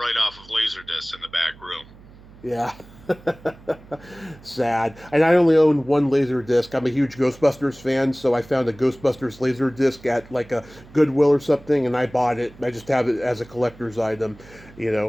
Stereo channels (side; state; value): right; noise; hum, 22 dB below the sound